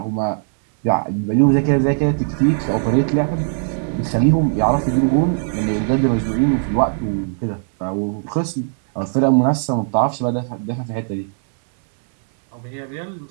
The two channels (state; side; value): silent; left; 66 dB below the other